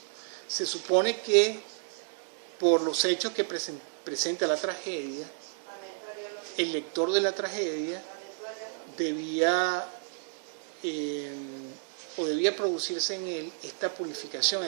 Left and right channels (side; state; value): left; silent; 57 dB below the other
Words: Se supone que por los hechos que presenta la tragedia, el lector de la tragedia debía producirse en él esta purificación,